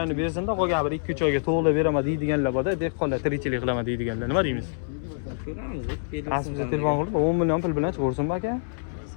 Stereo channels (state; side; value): silent; right; 61 dB below the other